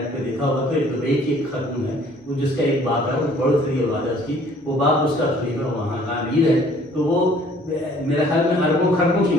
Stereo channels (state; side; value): normal; both; correlation 0.56